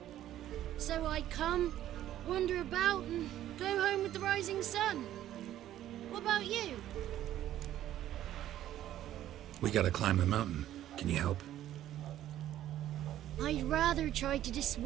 So I come, wander about, and go home with the rising sun. What about you? We gotta climb the mountain. Can you help? I'd rather try to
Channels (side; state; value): left; quieter; 12.6 dB